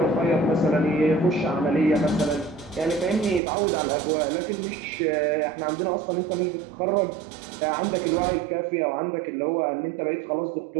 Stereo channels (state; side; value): drops out; left; at 3.4 s